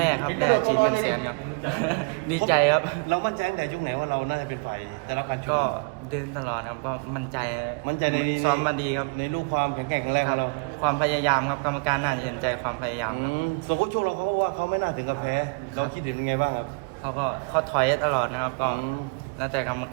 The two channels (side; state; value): left; quieter; 35.6 dB